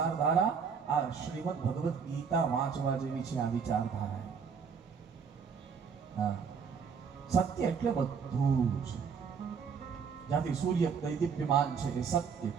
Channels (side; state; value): left; quieter; 6.2 dB